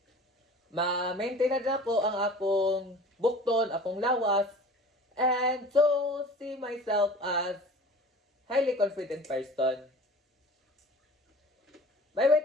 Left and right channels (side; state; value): both; normal; correlation 0.42